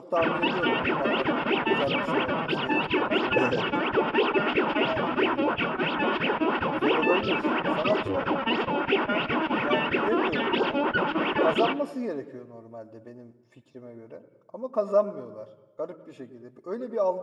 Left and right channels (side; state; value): both; identical; correlation 1.00